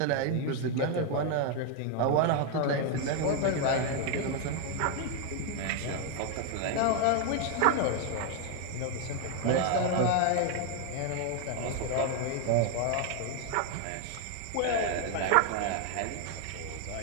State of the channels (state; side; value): different; both; correlation 0.00